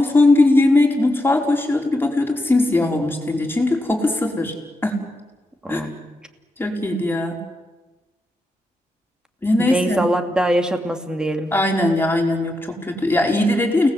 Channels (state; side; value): normal; both; correlation 0.85